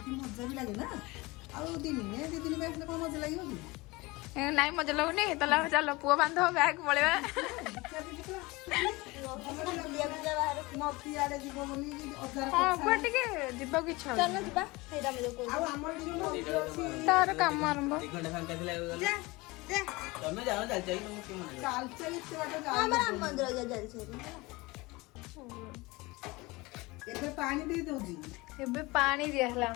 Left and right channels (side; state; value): right; quieter; 23.0 dB